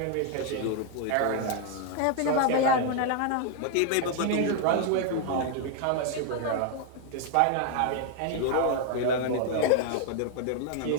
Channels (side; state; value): both; different; correlation 0.00